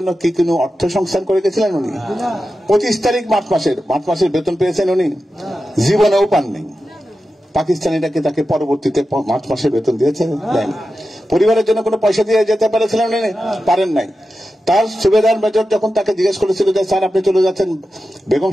কি কোনো অর্থ সংস্থান করে গেছিলেন উনি? 25 তারিখ মার্চ মাসের বেতন পেয়েছেন উনি? জীবনেও পাননি। পাকিস্তানিটাকে তাকে পরবর্তীতে মার্চ মাসের বেতন দিয়েছে? দেন। পরিবারের জন্য কোনো পয়সা দিয়ে যেতে পেরেছিলেন উনি? পারেন নাই। তার সুবেদার মেজর যখন তাকে জিজ্ঞেস করেছিল যে স্যার আপনি চলে যাচ্ছেন, বেগম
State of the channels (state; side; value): normal; both; correlation 0.92